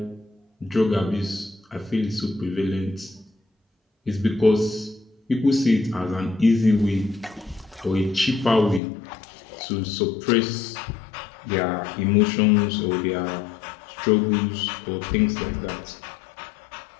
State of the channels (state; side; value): drops out; right; at 8.8 s